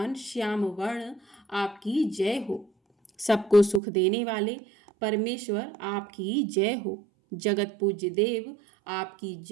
श्याम वर्ण, आपकी जय हो। सबको सुख देने वाले परमेश्वर, आपकी जय हो। जगत पूज्य देव, आपकी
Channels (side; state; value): left; drops out; at 3.8 s